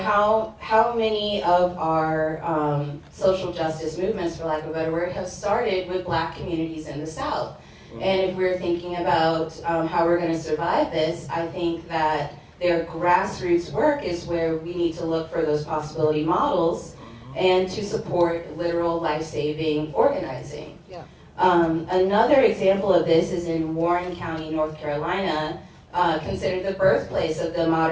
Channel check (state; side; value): identical; both; correlation 1.00